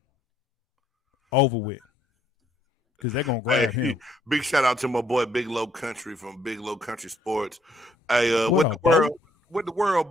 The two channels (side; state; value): both; normal; correlation 0.69